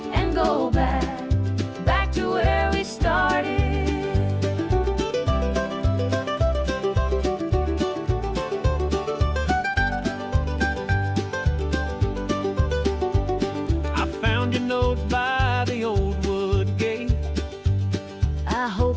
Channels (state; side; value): identical; both; correlation 1.00